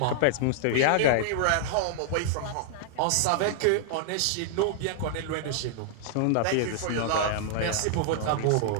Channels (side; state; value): both; different; correlation -0.01